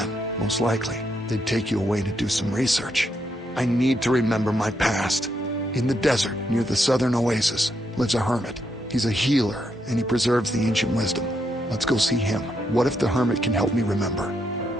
most likely, they'd take you away to do some research. I need to remember my past. In the desert, near the southern oasis, lives a hermit. He's a healer, and he preserves the ancient wisdom. Let's go see him. What if the hermit can help me remember?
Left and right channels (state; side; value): normal; both; correlation 0.79